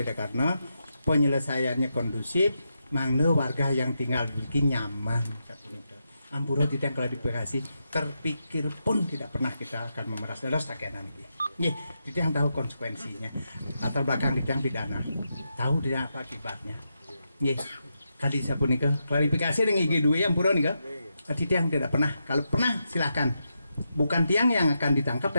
karena penyelesaiannya kondusif, mangga warga yang tinggal di Riki nyaman. Ampura tidak klarifikasi, terpikir pun tidak pernah kita akan memeras dalam sakenan ini. Nih, kita yang tahu konsekuensinya. Latar belakang kita yang pidana, tahu tidak apa akibatnya. Nih, kali saya pun nikah klarifikasi dengan IG2 yang pura nikah. Tidak yang tidak pernah. Kalau pernah silakan. Bukan tiang yang akan ditangkap,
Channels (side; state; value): both; inverted; correlation -0.85